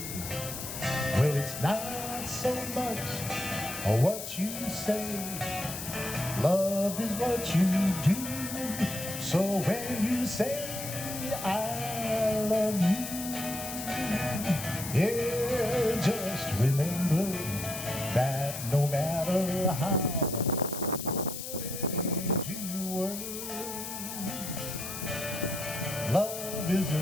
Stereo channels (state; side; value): noise; left; hiss, 7 dB below the sound